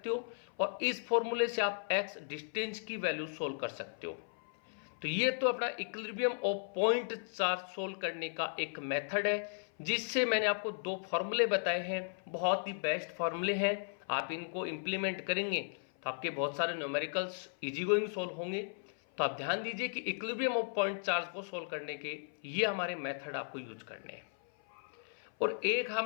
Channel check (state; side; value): silent; right; 54 dB below the other